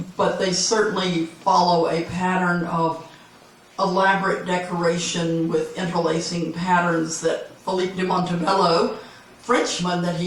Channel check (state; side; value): identical; both; correlation 1.00